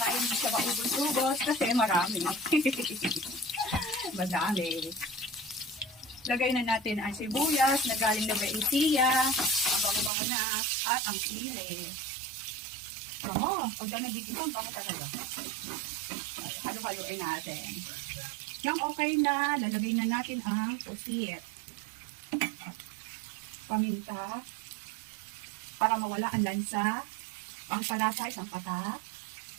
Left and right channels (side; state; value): left; drops out; at 10.1 s